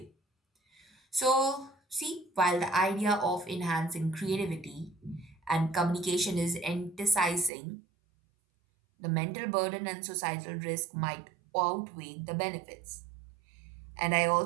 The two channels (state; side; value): drops out; left; at 7.5 s